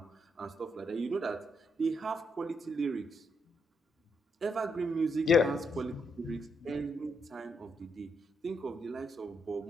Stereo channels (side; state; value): both; normal; correlation 0.78